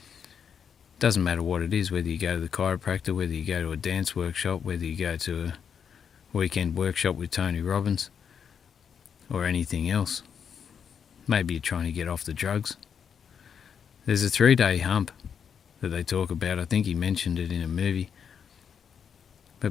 doesn't matter what it is, whether you go to the chiropractor, whether you go to a dance workshop, whether you go to a weekend workshop with Tony Robbins, or anything else. Maybe you're trying to get off the drugs. There's a 3-day hump that they talk about. I think he mentioned it in a movie.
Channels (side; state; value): right; quieter; 7.4 dB